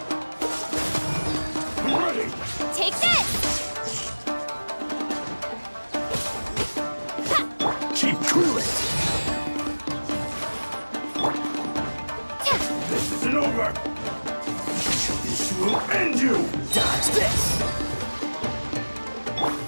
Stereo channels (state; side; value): inverted; both; correlation -1.00